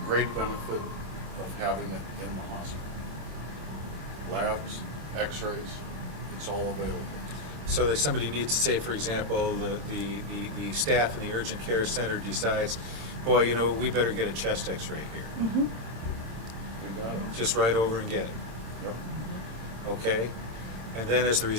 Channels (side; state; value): left; late; 26 ms